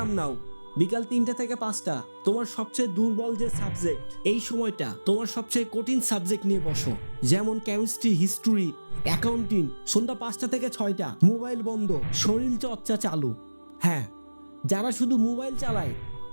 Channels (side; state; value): both; inverted; correlation -1.00